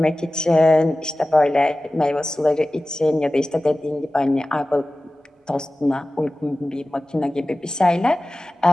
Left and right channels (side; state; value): both; normal; correlation 0.96